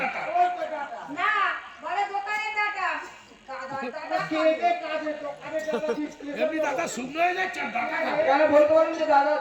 টাকা। ওই তো টাকা। না, বলে দোকানের টাকা। গাধার টাকা। খেয়ে দে কাজে, দোকানে টাকা বিক্রি করে। এমনি দাদা শুনলে গেছে টাকা। কেন বলতে পারেন যে দাদা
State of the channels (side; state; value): both; identical; correlation 1.00